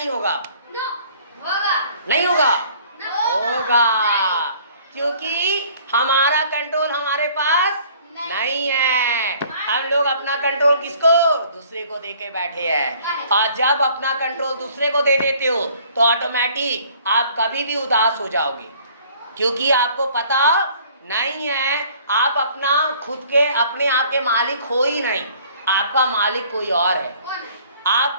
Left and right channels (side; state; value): both; inverted; correlation -0.55